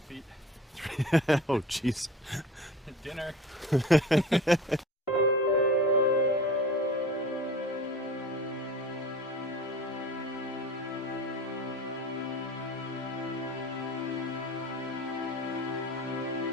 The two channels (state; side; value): normal; both; correlation 0.39